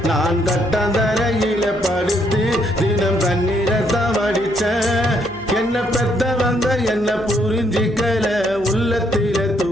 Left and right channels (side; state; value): left; noise; hum, 21 dB below the sound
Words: நான் கட்டந்தரையில படுத்து தினம் தண்ணீரத்தை வடிச்சேன். என்ன பெத்தவங்க என்ன புரிஞ்சிக்கல, உள்ளத்தில